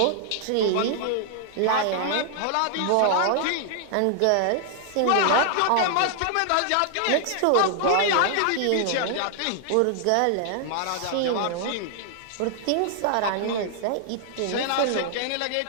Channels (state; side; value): different; both; correlation 0.00